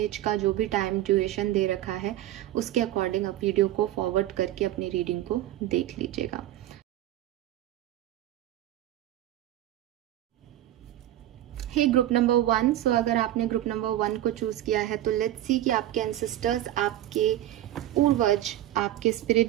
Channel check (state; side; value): quieter; left; 13.5 dB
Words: का जो भी टाइम ड्यूरेशन दे रखा है, उसके अकॉर्डिंग आप वीडियो को फॉरवर्ड करके अपनी रीडिंग को देख लीजिएगा। हे ग्रुप नंबर 1, सो अगर आपने ग्रुप नंबर 1 को चूज किया है तो लेट्स सी कि आपके एंसेस्टर्स, आपके पूर्वज, आपके